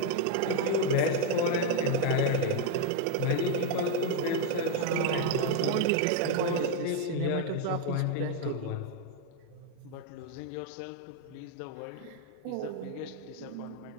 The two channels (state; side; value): different; both; correlation 0.01